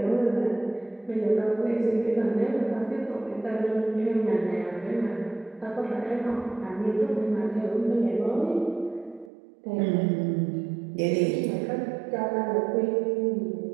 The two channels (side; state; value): left; drops out; at 9.3 s